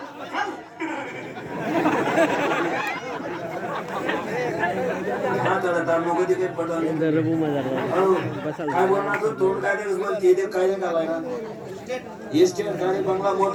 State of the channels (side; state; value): both; identical; correlation 1.00